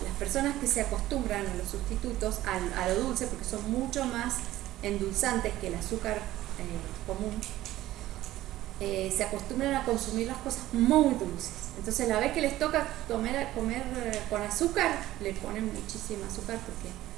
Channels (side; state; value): left; quieter; 15.1 dB